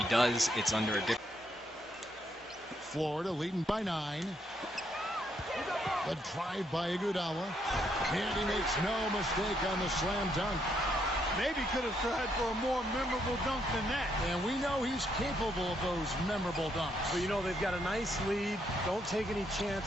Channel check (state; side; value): normal; both; correlation 0.75